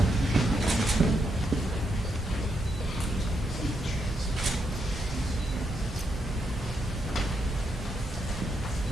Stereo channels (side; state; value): both; normal; correlation 0.80